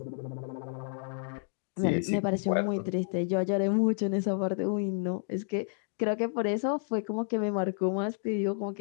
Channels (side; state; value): right; silent; digital silence